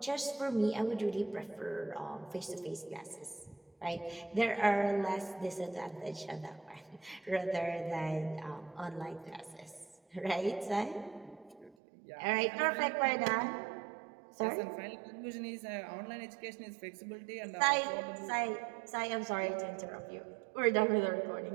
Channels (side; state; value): left; drops out; at 11.8 s